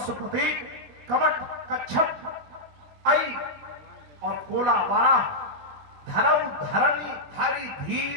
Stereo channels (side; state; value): left; late; 20 ms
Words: कवट, कच्छप, ऐ और कोला, वाराह, धरऊ, धरणी, धारी,